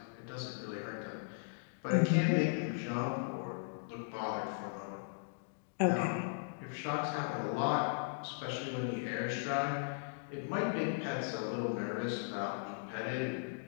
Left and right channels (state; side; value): silent; right; digital silence